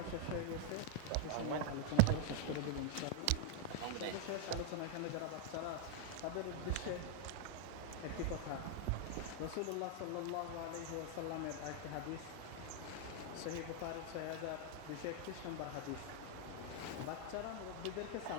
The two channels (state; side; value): different; both; correlation 0.00